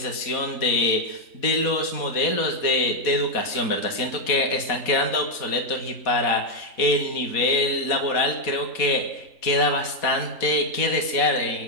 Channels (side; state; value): right; late; 4.1 ms